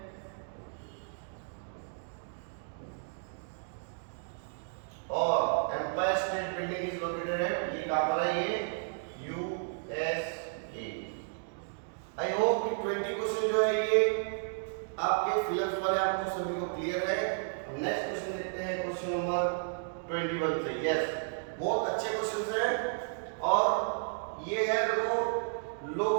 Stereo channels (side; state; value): left; silent; digital silence